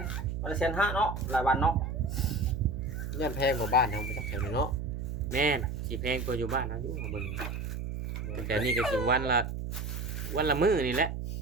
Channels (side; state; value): right; noise; hum, 5 dB below the sound